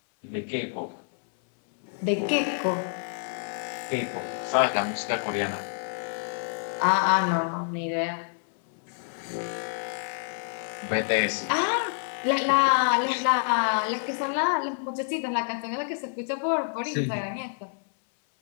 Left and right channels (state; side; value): silent; right; 60 dB below the other